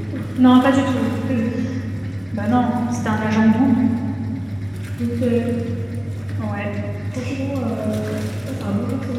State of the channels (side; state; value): left; noise; hum, 27 dB below the sound